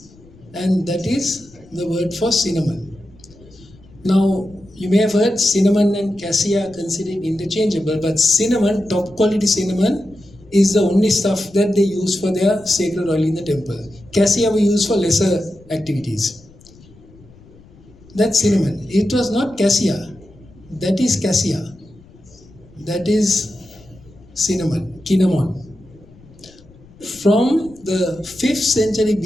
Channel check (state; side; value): noise; left; rumble, 25 dB below the sound